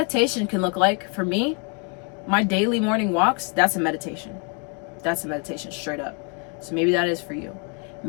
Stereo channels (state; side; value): quieter; right; 35.5 dB